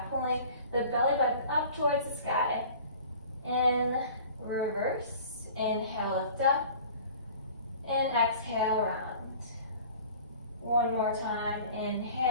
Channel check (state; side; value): inverted; both; correlation -0.44